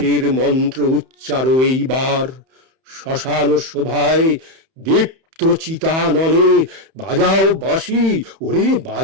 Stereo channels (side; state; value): left; late; 31 ms